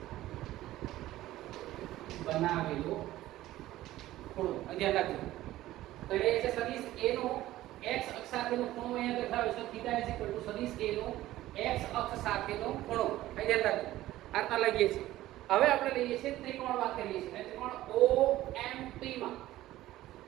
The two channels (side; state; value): left; quieter; 15.4 dB